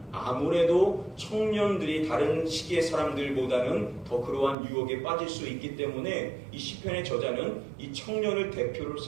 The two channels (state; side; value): drops out; left; at 4.5 s